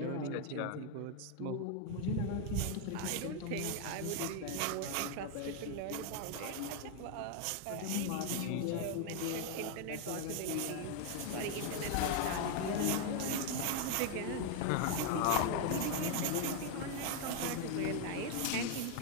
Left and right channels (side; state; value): both; different; correlation 0.00